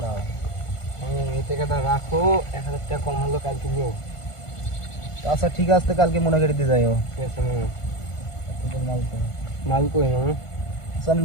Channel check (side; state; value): right; late; 1.5 ms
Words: দাও। এই টাকাটা রাখো, 1000 টাকা কম হলো কালকে নিও। আচ্ছা ঠিক আছে, কালকে মনে করে দিয়ে যাইও। ঠিক আছে মামু। মাল তো মাল কই মামু? আচ্ছা, আমি